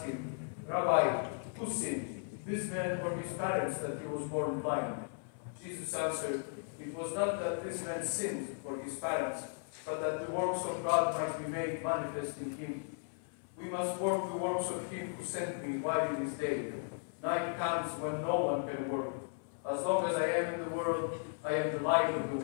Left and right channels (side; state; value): right; silent; 54 dB below the other